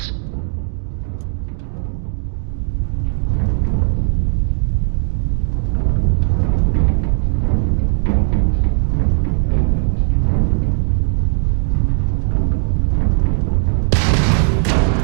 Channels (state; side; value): silent; left; digital silence